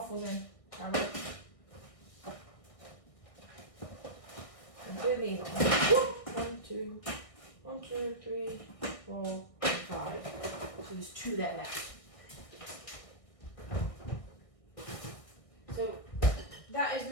in. I'm doing these on. 1, 2, 1, 2, 3, 4, 5. So there's 2 there left. So that is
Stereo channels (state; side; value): late; right; 1.6 ms